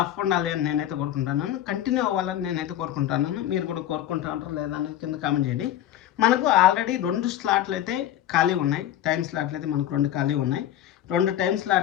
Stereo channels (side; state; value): right; quieter; 12.0 dB